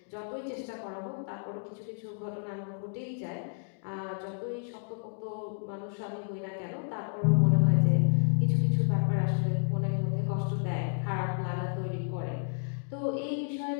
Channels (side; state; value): right; silent; digital silence